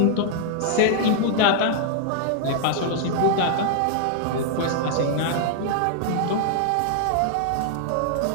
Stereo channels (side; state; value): both; different; correlation -0.01